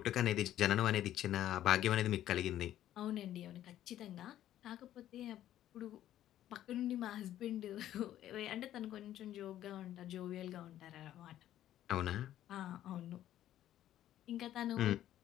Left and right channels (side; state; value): right; quieter; 12.4 dB